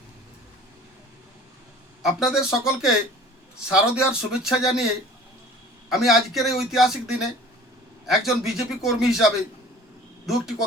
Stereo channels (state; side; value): normal; both; correlation 0.46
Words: আপনাদের সকলকে শারদীয়ার শুভেচ্ছা জানিয়ে আমি আজকের এই ঐতিহাসিক দিনে একজন বিজেপি কর্মী হিসাবে দু একটি